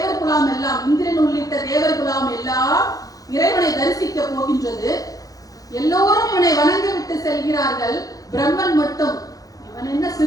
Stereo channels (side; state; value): right; late; 0.17 ms